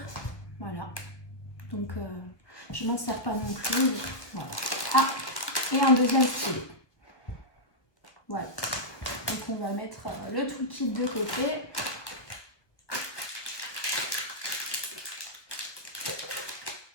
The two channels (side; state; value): right; late; 1.4 ms